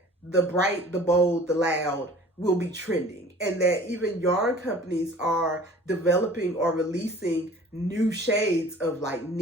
the bright, the bold, the loud will be trending, and that even yarn companies are developing or releasing new shades of like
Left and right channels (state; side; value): normal; both; correlation 0.47